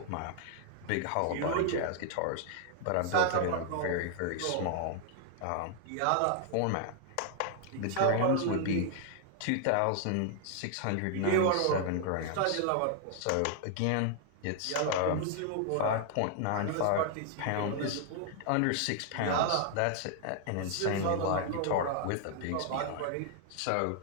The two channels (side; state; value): both; different; correlation 0.00